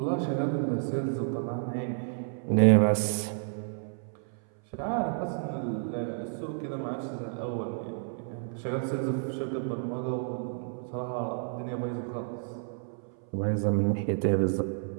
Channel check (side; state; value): left; silent; 56 dB below the other